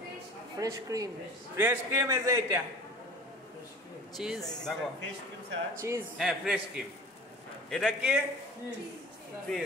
fresh cream. Fresh cream. এই যে এটা চিজ দেখো। Fish cream sir. চিজ হ্যাঁ, ফ্রেশ ক্রিম। এটা কি?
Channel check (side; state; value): both; normal; correlation 0.41